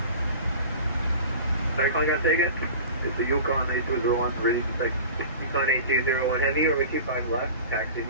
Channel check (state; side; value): inverted; both; correlation -0.37